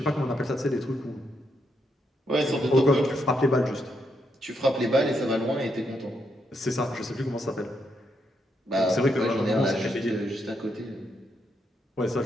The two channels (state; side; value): normal; both; correlation 0.79